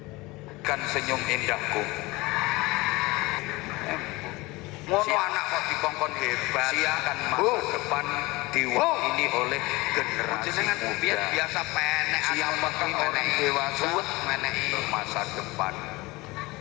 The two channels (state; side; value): quieter; right; 22.2 dB